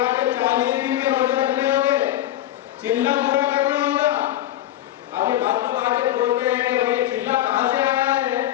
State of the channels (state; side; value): quieter; right; 13.4 dB